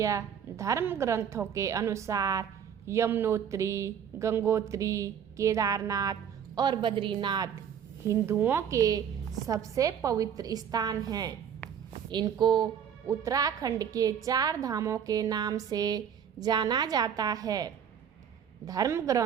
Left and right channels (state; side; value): quieter; left; 8.3 dB